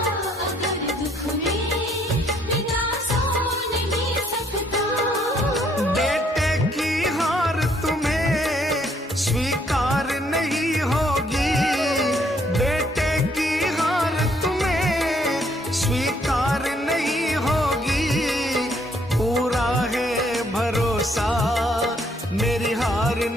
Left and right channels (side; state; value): both; normal; correlation 0.68